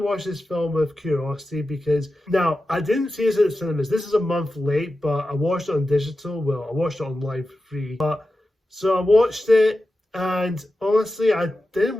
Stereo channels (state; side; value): normal; both; correlation 0.92